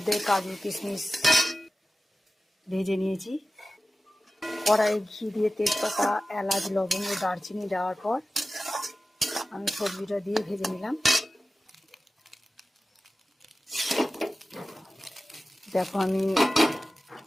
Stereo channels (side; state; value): both; normal; correlation 0.94